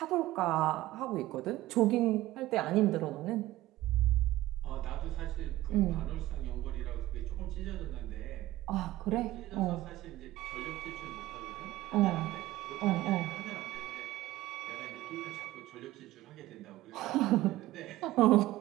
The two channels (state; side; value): quieter; left; 16.5 dB